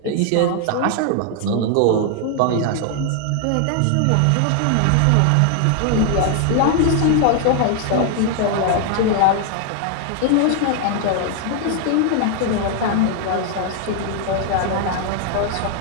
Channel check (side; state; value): both; different; correlation 0.00